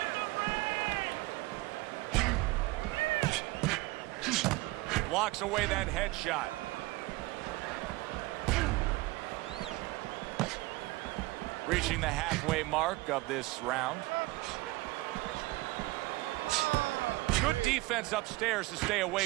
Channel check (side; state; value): left; quieter; 21.1 dB